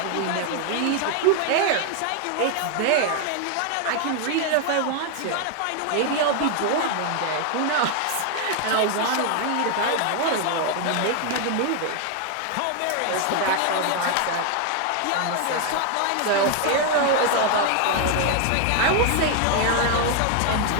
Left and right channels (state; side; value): different; both; correlation 0.00